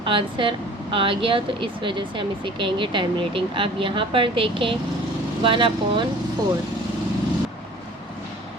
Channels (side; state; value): both; normal; correlation 0.47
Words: आंसर आ गया, तो इस वजह से हम इसे कहेंगे टर्मिनेटिंग। अब यहाँ पर देखें 1/4,